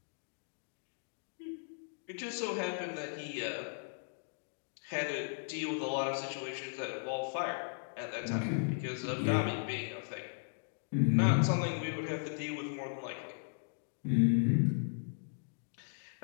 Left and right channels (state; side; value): silent; right; digital silence